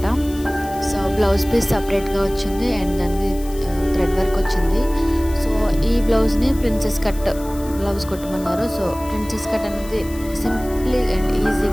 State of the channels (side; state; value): left; noise; hiss, 18 dB below the sound